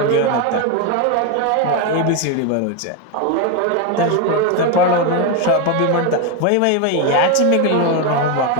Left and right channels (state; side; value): different; both; correlation 0.02